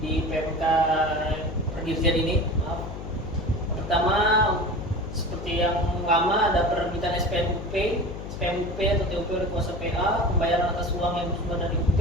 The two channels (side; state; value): left; noise; hum, 9 dB below the sound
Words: PMK Perdirjen ini. Maaf. Yang pertama seperti yang lama ada penerbitan SPMUP atau TUP oleh kuasa PA, pembayaran atas uang yang bersumber dari UP.